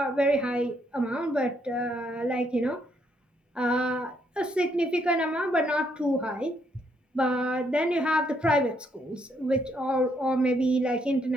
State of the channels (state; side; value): normal; both; correlation 0.73